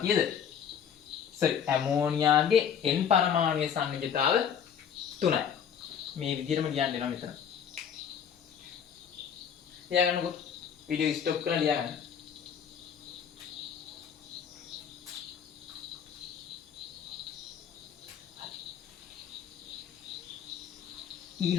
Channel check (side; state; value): right; quieter; 8.0 dB